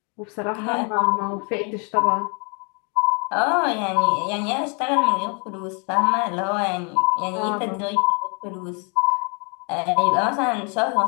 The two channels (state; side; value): quieter; right; 35.6 dB